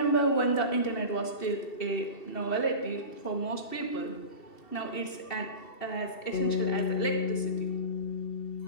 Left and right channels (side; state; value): right; late; 2.7 ms